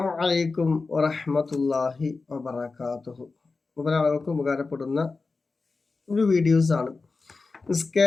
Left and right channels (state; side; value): quieter; right; 4.0 dB